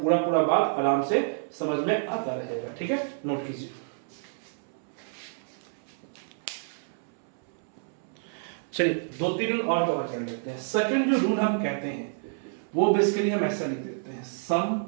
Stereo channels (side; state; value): left; silent; 59 dB below the other